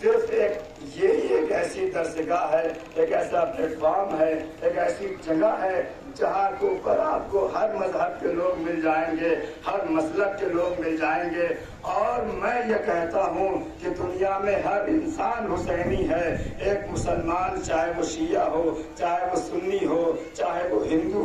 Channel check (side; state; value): both; identical; correlation 1.00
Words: ایک ایسی درسگاہ ہے، ایک ایسا پلیٹ فارم ہے، ایک ایسی جگہ ہے جہاں کے اوپر آپ کو ہر مذہب کے لوگ مل جائیں گے، ہر مسلک کے لوگ مل جائیں گے۔ اور میں یہ کہتا ہوں کہ دنیا میں ہر انسان حسینی ہے، ایک مسلمان چاہے وہ شیعہ ہو، چاہے وہ سنی ہو، چاہے وہ ہندو